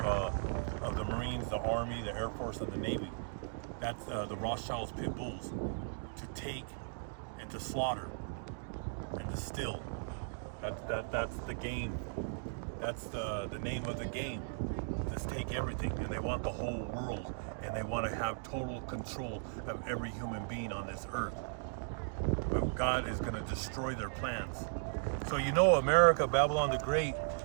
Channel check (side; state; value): left; silent; digital silence